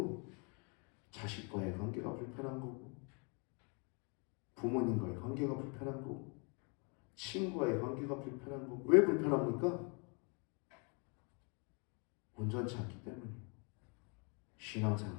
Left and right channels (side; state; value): right; quieter; 34.8 dB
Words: 자식과의 관계가 불편한 거고, 부모님과의 관계가 불편한 거고, 친구와의 관계가 불편한 거고. 왜 불편합니까? 온전치 않기 때문이에요. 신앙생활,